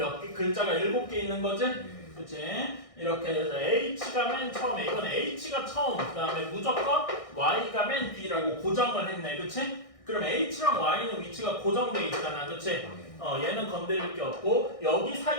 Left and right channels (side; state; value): right; late; 1.6 ms